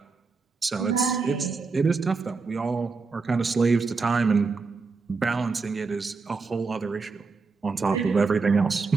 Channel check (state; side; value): quieter; left; 4.4 dB